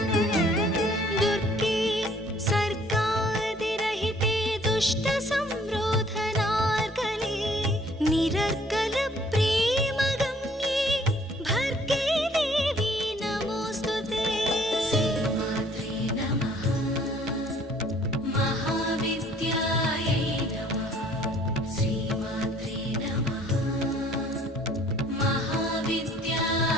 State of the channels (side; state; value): both; normal; correlation 0.58